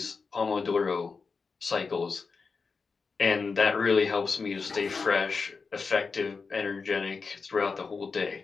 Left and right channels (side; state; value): right; quieter; 4.8 dB